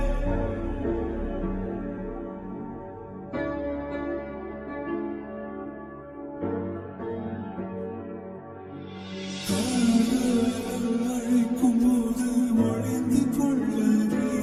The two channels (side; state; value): both; identical; correlation 1.00